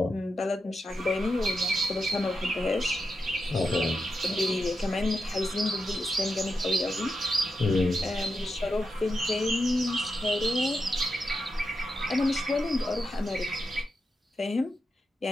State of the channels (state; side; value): normal; both; correlation 0.87